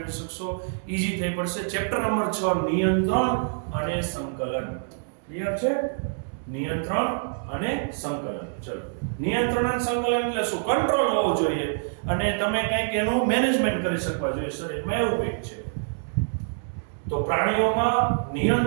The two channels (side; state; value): left; silent; digital silence